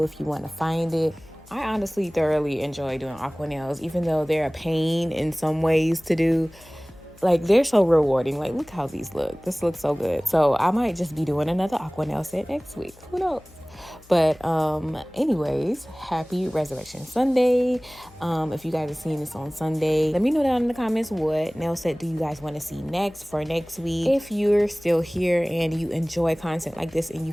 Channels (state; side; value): noise; left; hum, 25 dB below the sound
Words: if you want to find it. I honestly thoroughly enjoy doing aqua nails, even though they're a pain in some ways to do. Like, they're so rewarding. Like, look how these look. This looks so good. So I might just be doing another aqua nail set next week. Who knows? But anyways, happy Resurrection Sunday. If you guys are seeing this on Sunday, let me know down in the comments what nail set do you guys want to see next for next week. If you're still here and you enjoy content like this and you